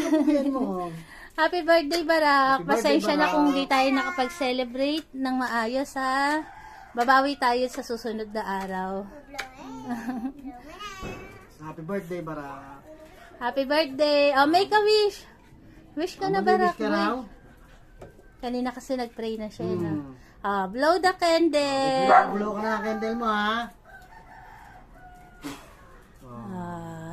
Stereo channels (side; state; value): both; identical; correlation 1.00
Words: mo. Happy birthday, Barak. Happy birthday, Pasensya na Barak. kung di tayo nakapag-celebrate ng maayos, ha. Babawi tayo sa susunod na araw. Happy birthday, Barak. Happy birthday. Oh, make a wish. Wish ka na, Barak. Wish ka raw? Kanina kasi nag-pray na siya, no? Blow the candle. Blow ka na ang candle mo, ha?